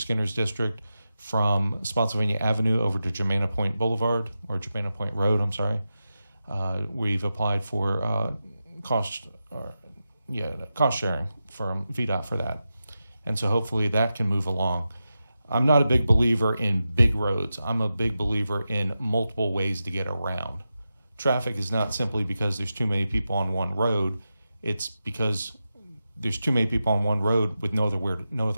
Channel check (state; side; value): inverted; both; correlation -0.91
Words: district from Spotsylvania Avenue over to Germana Point Boulevard, or Germana Point Road, I'm sorry. We've applied for cost sharing from VDOT for that. And so hopefully that can move along. I'm not a big believer in big roads. I'm a big believer in multiple ways to get around. Traffic is not simply because there's too many people on one road. It's because there's too many people on one road with no